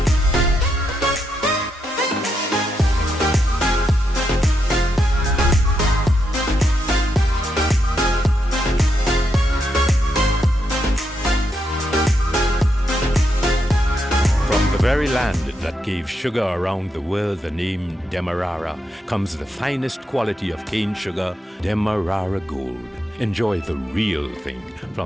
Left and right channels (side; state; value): both; normal; correlation 0.81